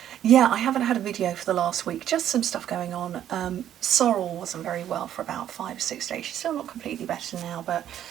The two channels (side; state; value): left; quieter; 10.9 dB